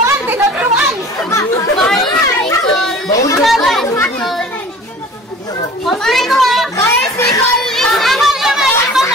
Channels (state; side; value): normal; both; correlation 0.44